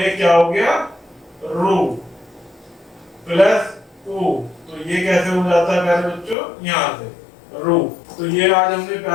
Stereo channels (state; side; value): drops out; right; at 6.4 s